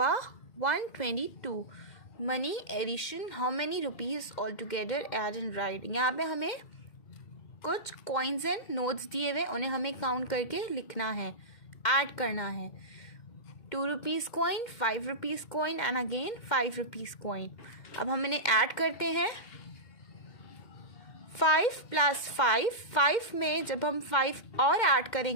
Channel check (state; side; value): late; right; 2.1 ms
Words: 122. Money addition. How many rupees altogether add and write. यहाँ पे हमें कुछ coins एंड नोट्स दिए हुए, उन्हें हमें काउंट करके लिखना है, ऐड करना है. 2 rupees coin, 5 rupees coin and again 5 rupees coin. अब हम इन्हें ऐड करते हैं. 5 + 5, 5 में जब हम 5 और ऐड